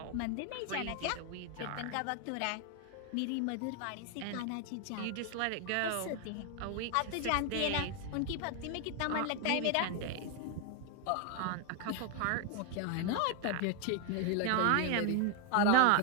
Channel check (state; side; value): different; both; correlation 0.01